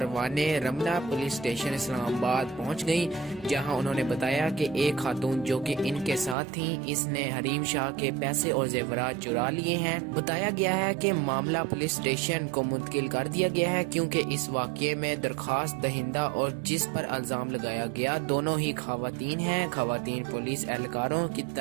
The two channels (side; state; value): left; drops out; at 6.4 s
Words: رملہ پولیس اسٹیشن اسلام آباد پہنچ گئیں، جہاں انہوں نے بتایا کہ ایک خاتون جو کہ ان کے ساتھ تھیں، اس نے حریم شاہ کے پیسے اور زیورات چرا لیے ہیں۔ بتایا گیا ہے کہ معاملہ پولیس اسٹیشن کو منتقل کر دیا گیا ہے، کیونکہ اس واقعے میں درخواست دہندہ اور جس پر الزام لگایا گیا دونوں ہی خواتین ہیں۔ خواتین پولیس اہلکاروں کی